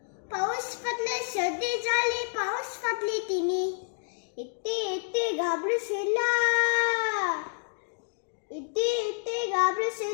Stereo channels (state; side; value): silent; right; digital silence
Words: पाऊस पडले सर्दी झाली पाऊस पडली तिने इथे घाबरशिला इथे